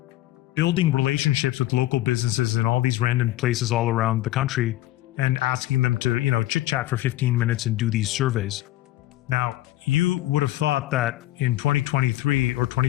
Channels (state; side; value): quieter; right; 15.5 dB